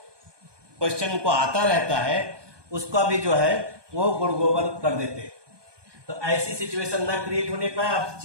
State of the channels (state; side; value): late; left; 1.2 ms